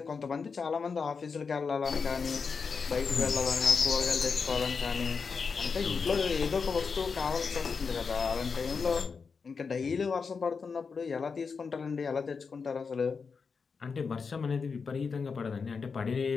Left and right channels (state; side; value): quieter; right; 5.3 dB